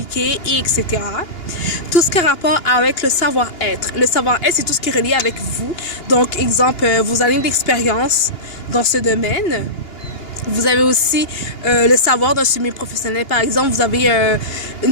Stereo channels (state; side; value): late; right; 2.9 ms